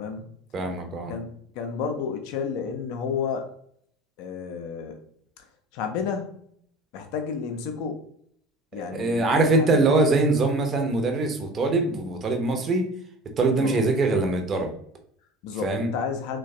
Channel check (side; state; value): both; normal; correlation 0.39